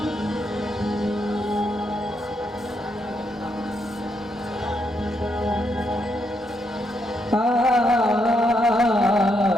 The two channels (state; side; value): normal; both; correlation 0.78